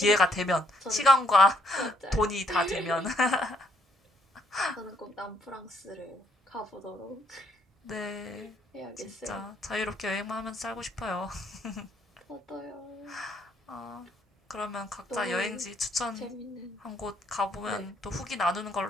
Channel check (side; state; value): both; normal; correlation 0.70